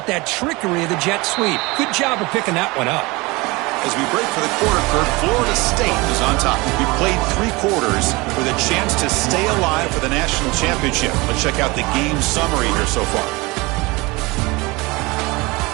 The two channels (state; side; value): quieter; left; 23.7 dB